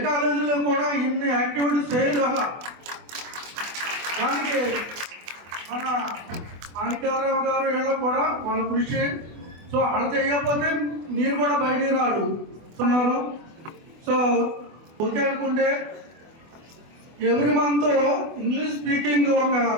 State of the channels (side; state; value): left; late; 24 ms